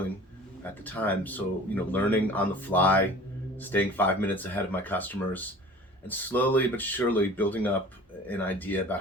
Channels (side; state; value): both; normal; correlation 0.44